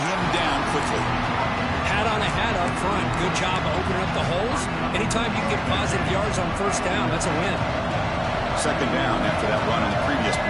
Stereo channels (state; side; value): identical; both; correlation 1.00